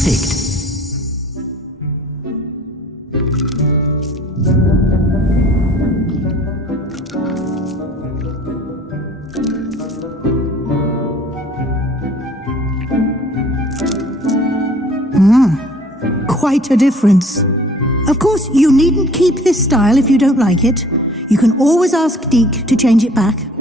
Quite a difference. Of course, you needn't keep this style if you don't like it. You can always ask Deke to change it back.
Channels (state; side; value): normal; both; correlation 0.52